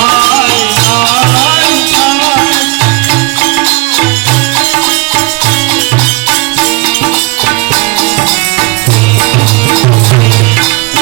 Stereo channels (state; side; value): quieter; left; 26.3 dB